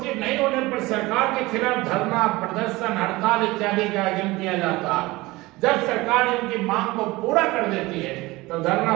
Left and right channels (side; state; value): left; quieter; 20.8 dB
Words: नहीं होने पर सरकार के खिलाफ धरना, प्रदर्शन, हड़ताल इत्यादि का आयोजन किया जाता है। जब सरकार इनकी मांग को पूरा कर देती है तो धरना